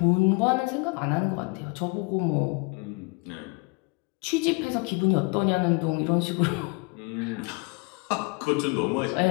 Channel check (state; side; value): quieter; right; 30.0 dB